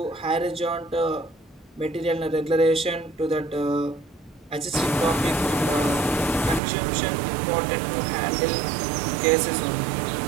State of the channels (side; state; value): left; drops out; at 6.6 s